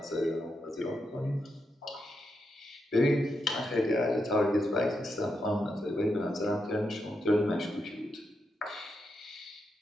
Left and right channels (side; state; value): both; normal; correlation 0.84